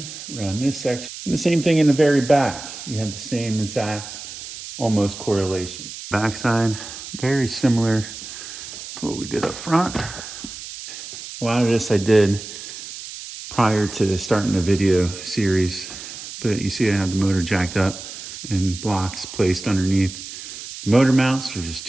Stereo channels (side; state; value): right; noise; hiss, 11 dB below the sound